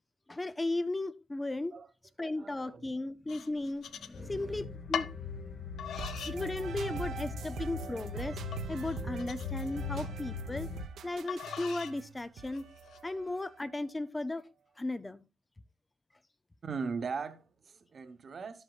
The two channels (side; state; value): both; normal; correlation 0.82